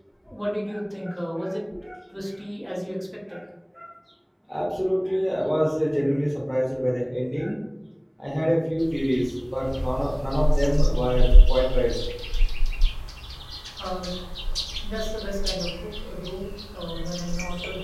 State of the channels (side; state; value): both; identical; correlation 1.00